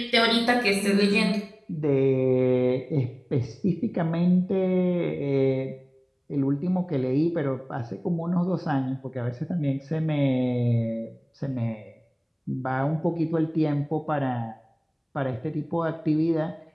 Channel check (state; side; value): identical; both; correlation 1.00